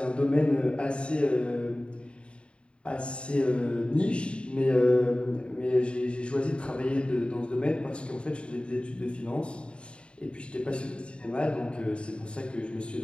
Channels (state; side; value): late; right; 0.055 ms